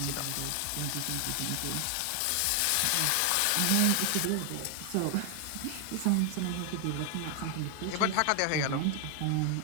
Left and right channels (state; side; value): different; both; correlation 0.00